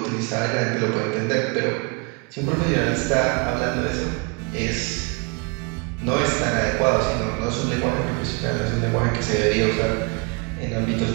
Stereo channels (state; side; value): quieter; left; 32.0 dB